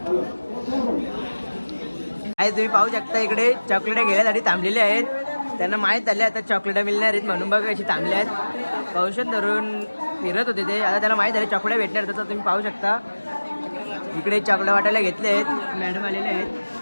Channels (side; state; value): both; inverted; correlation -1.00